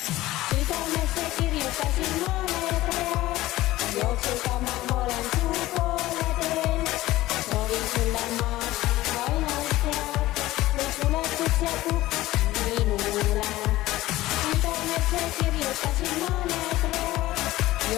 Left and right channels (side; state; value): right; quieter; 16.9 dB